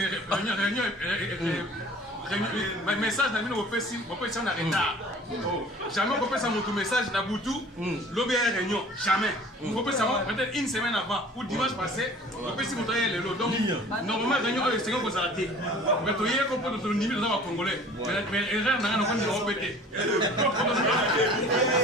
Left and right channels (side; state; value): both; normal; correlation 0.46